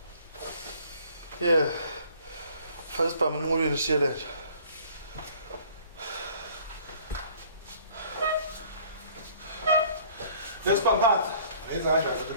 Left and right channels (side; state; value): both; inverted; correlation -0.54